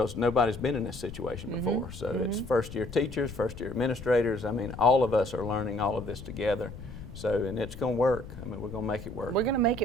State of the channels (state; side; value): noise; left; rumble, 12 dB below the sound